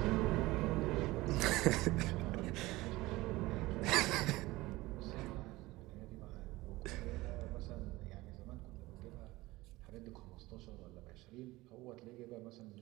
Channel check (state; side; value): quieter; left; 19.6 dB